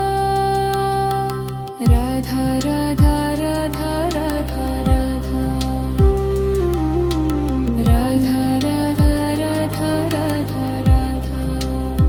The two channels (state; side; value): identical; both; correlation 1.00